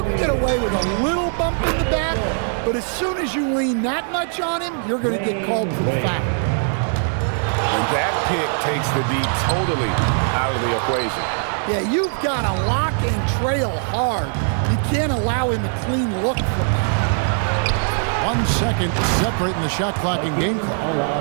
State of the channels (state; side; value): silent; left; 65 dB below the other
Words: can get away with a little bump in the back, but as soon as you lean that much on him, you're going to get called for the foul. And that pick takes the D totally out of the equation. Yeah, you've got to lock and trail hard. You can't allow him a clean look from that. 1 second separating the shot clock and game